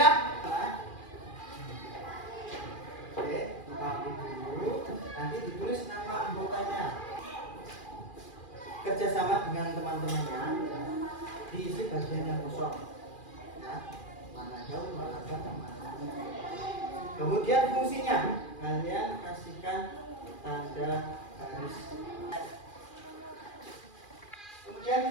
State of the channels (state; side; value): late; right; 2.4 ms